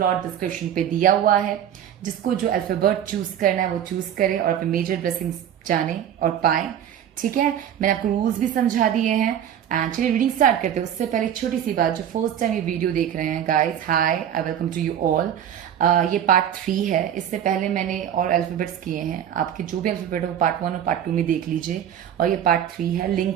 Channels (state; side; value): quieter; left; 9.9 dB